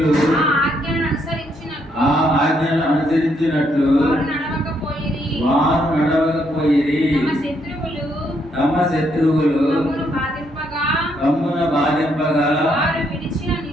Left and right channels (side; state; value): both; normal; correlation 0.74